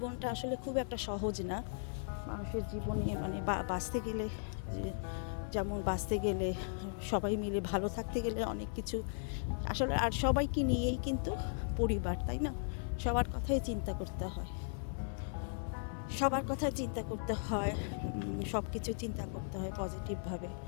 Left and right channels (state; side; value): silent; right; 53 dB below the other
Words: আসলে খুব একটা সহজ না। মানুষের জীবনে মানে বাঁচতে গেলে যেমন বাঁচতে গেলে সবাই মিলে ভালো থাকতে গেলে অনেক কিছু আসলে, আর সবাইকে নিয়েই কিন্তু পরিবার, তাই না? সবার কথাই চিন্তা করতে হয়, সবার কথা চিন্তা করতে হয়, সব কিছু চিন্তা করতে হয় পজিটিভভাবে,